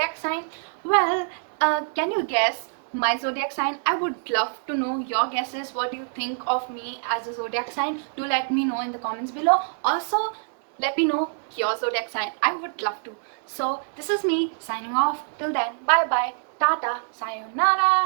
sign. Well, can you guess my zodiac sign? I would love to know your guesses. What do you think of me as a zodiac sign? Do let me know in the comments below. Also, let me know your zodiac sign. I would love to. So this is me signing off. Till then, bye bye, tata,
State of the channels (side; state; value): left; silent; digital silence